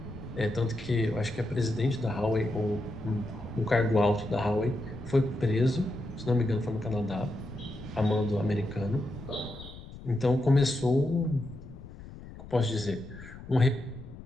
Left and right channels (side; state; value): left; noise; rumble, 15 dB below the sound